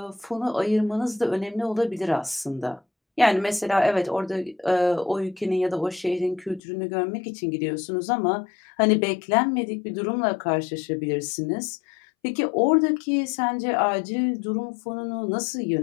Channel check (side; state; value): right; drops out; at 6.6 s